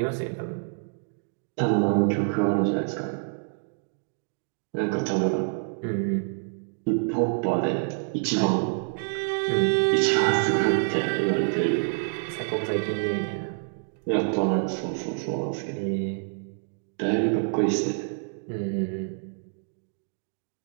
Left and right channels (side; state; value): left; silent; digital silence